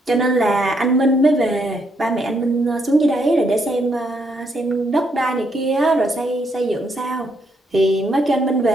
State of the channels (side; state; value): both; normal; correlation 0.75